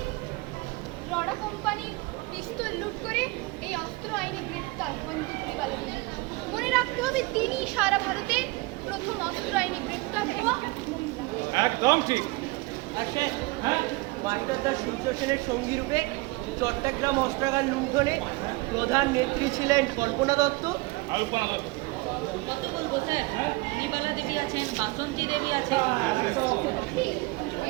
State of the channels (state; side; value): quieter; left; 23.7 dB